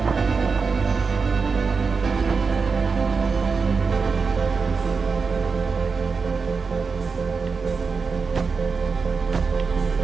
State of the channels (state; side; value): quieter; left; 4.9 dB